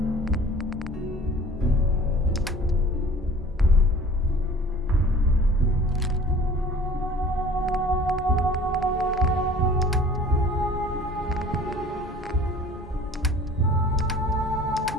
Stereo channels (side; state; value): both; normal; correlation 0.46